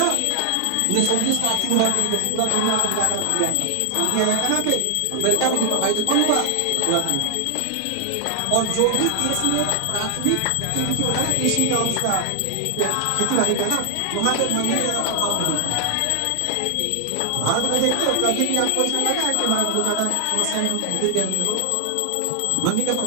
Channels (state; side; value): different; both; correlation 0.00